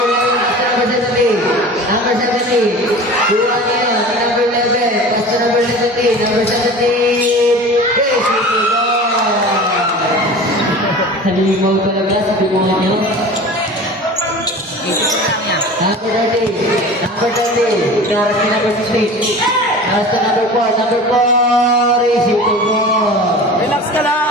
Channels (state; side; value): normal; both; correlation 0.37